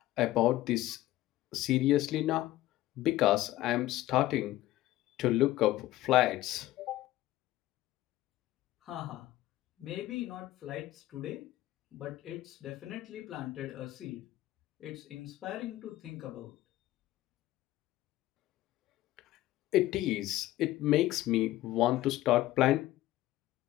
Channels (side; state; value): right; quieter; 15.8 dB